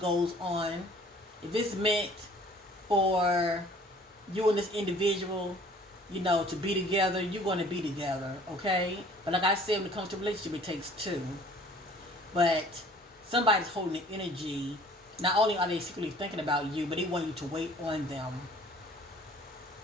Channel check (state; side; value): normal; both; correlation 0.52